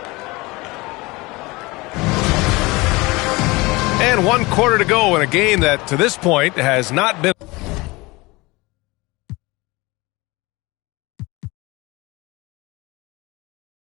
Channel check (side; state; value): right; quieter; 23.1 dB